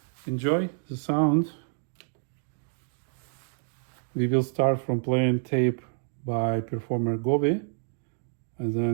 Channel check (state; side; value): silent; left; digital silence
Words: enjoy the sound. We will start from playing tape by performer Govi, and